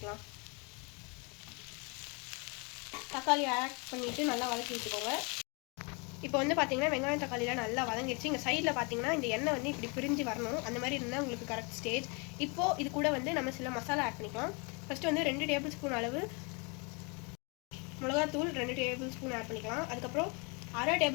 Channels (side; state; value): right; quieter; 32.1 dB